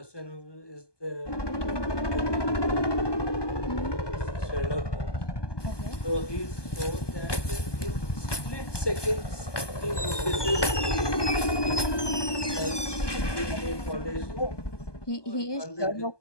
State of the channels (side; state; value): right; late; 1.2 ms